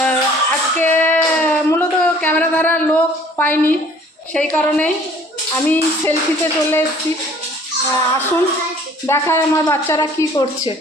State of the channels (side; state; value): both; normal; correlation 0.54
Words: আজকে মূলত ক্যামেরা ধরার লোক পাইনি, সেই কারণেই আমি সেলফিতে চলে এসেছি। আসুন দেখায় আমার বাচ্চারা কি করছে।